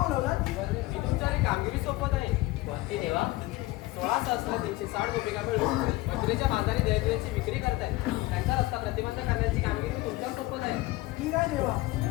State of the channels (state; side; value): quieter; right; 19.4 dB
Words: मी तुमच्याकडे कामगिरी सोपत आहे. कोणती देवा? 16,360 गोपिका मिळून मथुरेच्या बाजारी दैनदिवाची विक्री करतायत. त्यांचा रस्ता प्रतिबंध करण्याची कामगिरी तुमच्या सोपत आहे. ठीक आहे देवा,